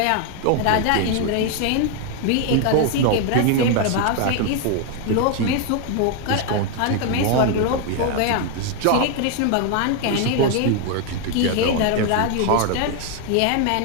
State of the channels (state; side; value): different; both; correlation 0.00